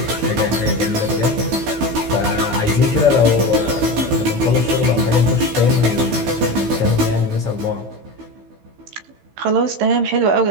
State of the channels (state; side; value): late; left; 15 ms